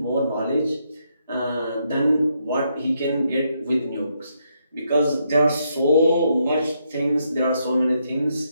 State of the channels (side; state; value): both; inverted; correlation -0.77